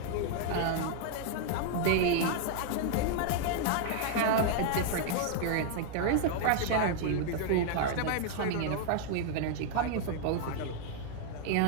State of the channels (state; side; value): different; both; correlation 0.00